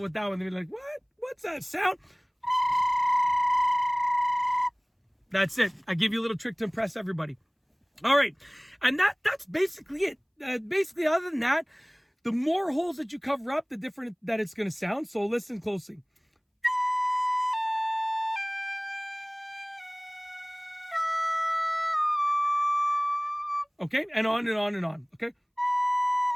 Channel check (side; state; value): both; identical; correlation 1.00